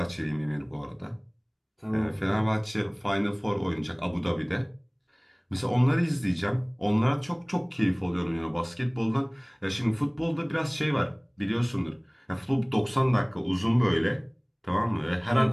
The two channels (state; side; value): identical; both; correlation 1.00